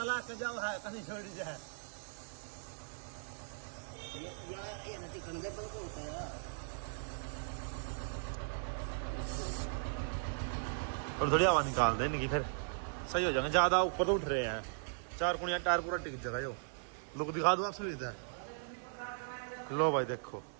के जाओ है कहीं छोड़ जाए ये नटी कंधे पर को होता है थोड़ी थोड़ी आवाज निकाल दे इनकी फिर सही हो जाएंगे ज्यादा ऊपर तो उठ रहे हैं 4 कुनिया टायर पूरा टिक जाएगा यो लुक दिखा दो आप सुविधा लो भाई देखो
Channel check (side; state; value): left; silent; digital silence